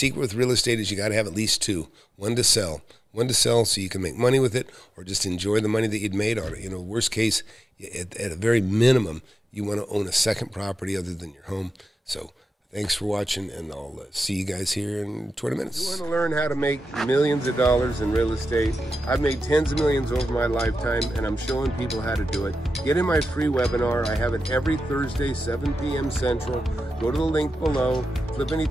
with real estate is you got to have at least two. One to sell so you can make money with it, or just enjoy the money that you'd made on it. Worst case, at a very minimum, you want to own a second property other than your home. So thanks for watching, and I'll see you guys here in 20 minutes. You want to learn how to make millions of dollars in real estate? I've made tens of millions over my lifetime, and I'm showing people how to do it. Get in my free webinar. I have it every Thursday, 7 p.m. Central. Go to the link below,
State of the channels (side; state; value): both; normal; correlation 0.92